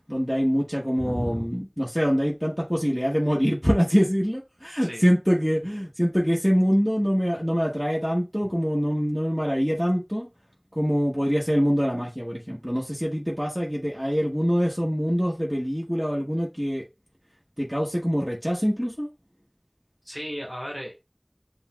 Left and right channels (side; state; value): both; identical; correlation 1.00